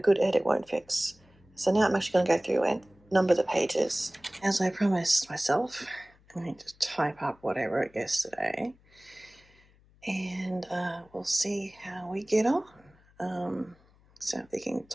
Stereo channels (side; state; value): left; noise; hum, 30 dB below the sound